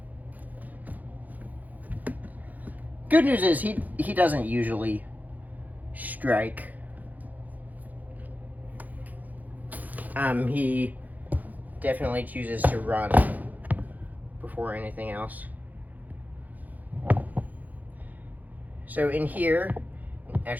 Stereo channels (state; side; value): late; left; 0.081 ms